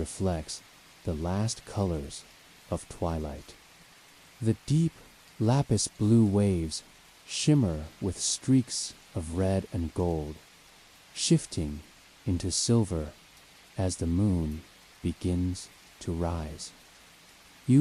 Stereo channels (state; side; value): identical; both; correlation 1.00